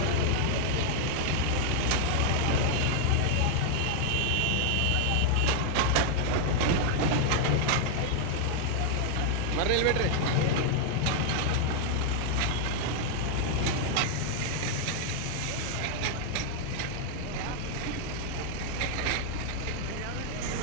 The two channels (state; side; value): different; both; correlation 0.00